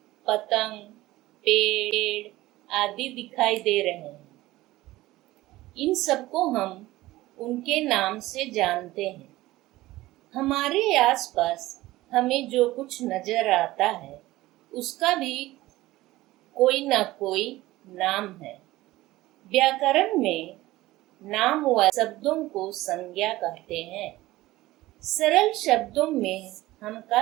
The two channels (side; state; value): left; quieter; 17.5 dB